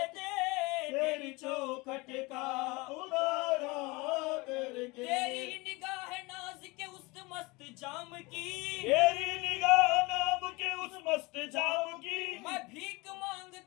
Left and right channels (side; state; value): right; quieter; 24.8 dB